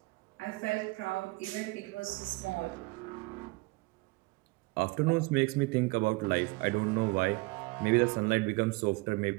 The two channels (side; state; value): left; quieter; 24.2 dB